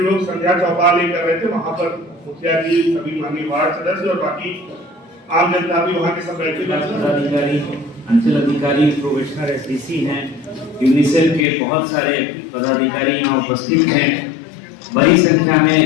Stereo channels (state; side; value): drops out; right; at 11.5 s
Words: लोग संध्या चौपाल कर रहे थे, वहाँ पर मुखिया जी, सभी माननीय वार्ड सदस्य और बाकी आम जनता भी वहाँ के सब बैठे। अंचल अधिकारी, प्रोबेशनर, एसडीसी हैं, यूनिसेफ के बहुत सारे पदाधिकारी यहाँ उपस्थित हैं। बड़ी संख्या में